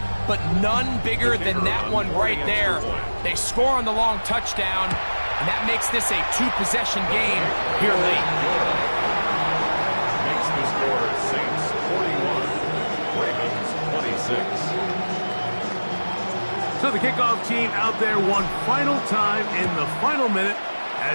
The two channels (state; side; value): inverted; both; correlation -1.00